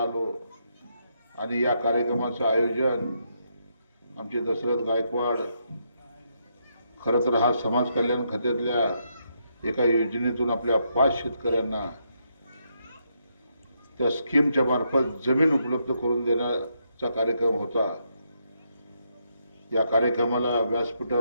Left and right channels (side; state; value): both; inverted; correlation -0.78